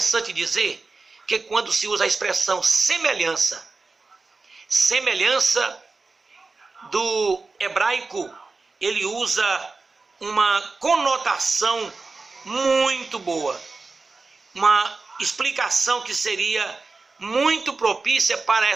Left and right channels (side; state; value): left; quieter; 3.9 dB